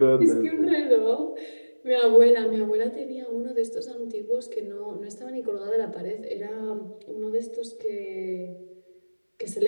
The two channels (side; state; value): both; inverted; correlation -1.00